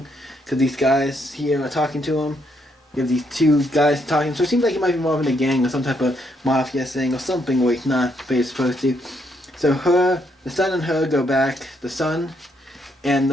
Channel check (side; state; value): both; normal; correlation 0.74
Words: because these guys here are talking to him. You have these two guys talking, so it seems like he might be involved in a gang or some type of mafia thing or something where he's not, but he's supposed to. So the son and her go back, the son, and